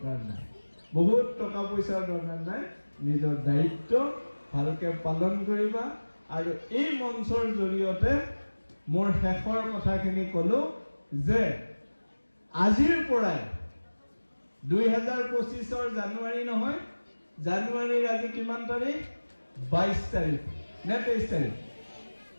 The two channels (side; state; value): both; inverted; correlation -1.00